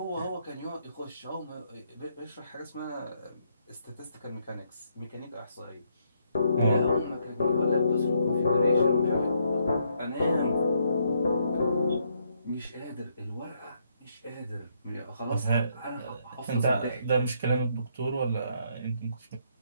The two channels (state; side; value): inverted; both; correlation -0.74